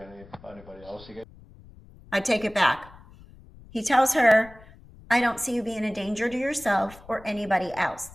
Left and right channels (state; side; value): noise; left; rumble, 22 dB below the sound